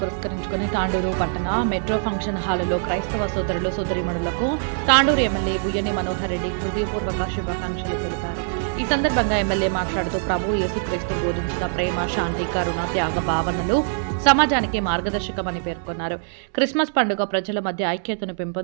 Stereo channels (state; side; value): silent; left; 63 dB below the other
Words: తాండూరు పట్టణ మెట్రో ఫంక్షన్ హాలులో క్రైస్తవ సోదరులు సోదరీమణులకు తాండూరు ఎమ్మెల్యే బుయ్యని మనోహర్ రెడ్డి హృదయపూర్వక శుభాకాంక్షలు తెలిపారు. ఈ సందర్భంగా ఎమ్మెల్యే మాట్లాడుతూ ప్రభు యేసుక్రీస్తు బోధించిన ప్రేమ, శాంతి, కరుణ, త్యాగ భావనలు సమాజానికి మార్గదర్శకమని పేర్కొన్నారు. క్రిస్మస్ పండుగ ప్రజల మధ్య ఐక్యతను